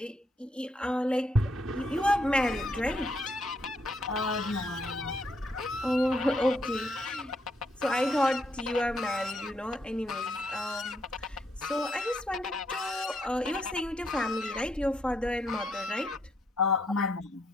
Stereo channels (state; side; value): normal; both; correlation 0.75